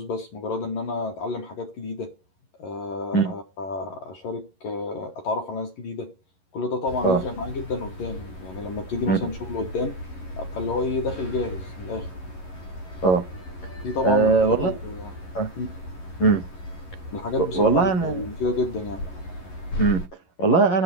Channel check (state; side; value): late; right; 11 ms